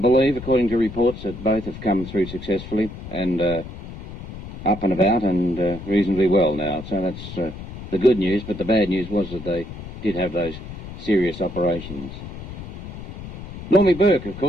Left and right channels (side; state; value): left; noise; rumble, 11 dB below the sound